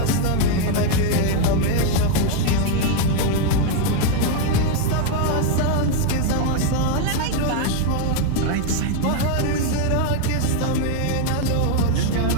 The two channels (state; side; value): different; both; correlation 0.01